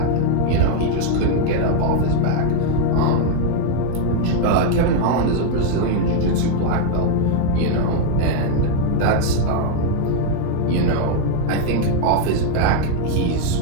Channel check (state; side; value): different; both; correlation 0.00